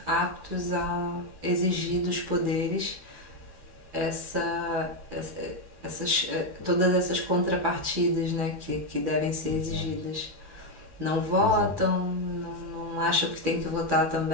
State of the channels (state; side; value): late; left; 12 ms